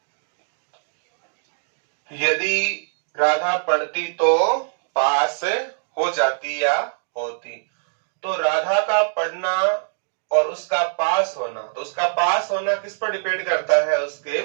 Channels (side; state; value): left; silent; digital silence